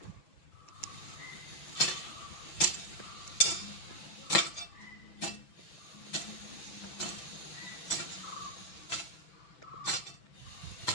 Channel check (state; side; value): late; right; 6.0 ms